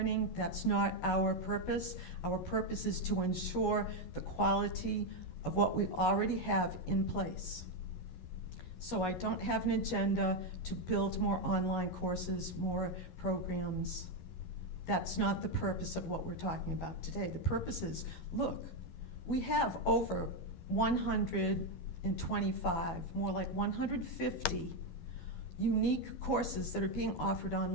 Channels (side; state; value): right; late; 11 ms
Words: That's not our purpose. Our purpose is to ensure the quality of what we already have in place. So I don't have an agenda to build more online courses, more programs. That's not the purpose of what we're talking about today. The purpose is, look, we have over 125, more like 150 unique courses that are being offered